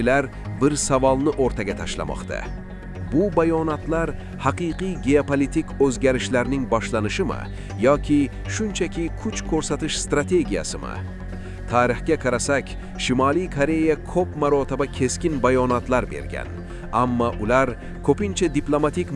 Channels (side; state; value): both; identical; correlation 1.00